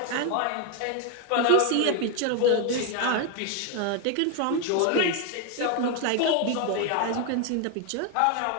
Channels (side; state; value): both; different; correlation 0.01